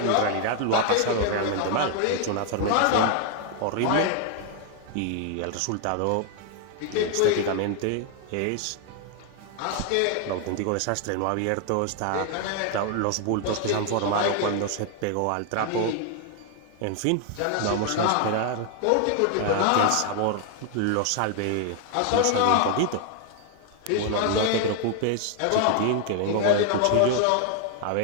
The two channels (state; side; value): different; both; correlation 0.00